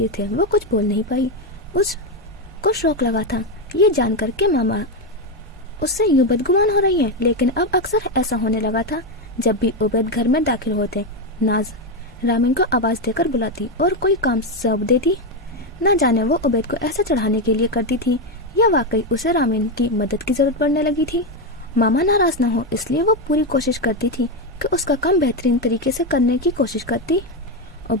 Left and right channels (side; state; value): both; normal; correlation 0.08